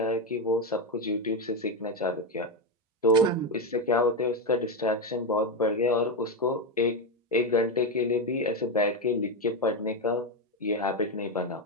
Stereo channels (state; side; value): normal; both; correlation 0.09